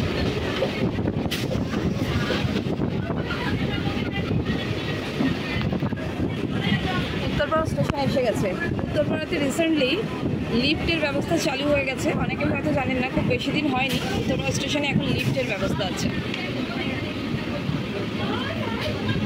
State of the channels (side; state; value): both; identical; correlation 1.00